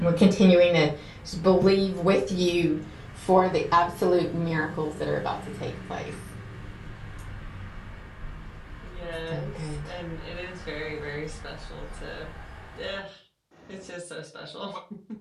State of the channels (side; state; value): both; identical; correlation 1.00